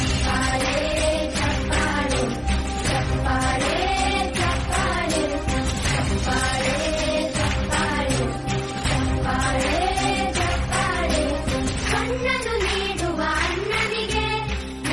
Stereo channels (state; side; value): identical; both; correlation 1.00